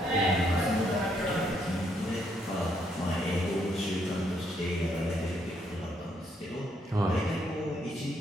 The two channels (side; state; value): both; normal; correlation 0.73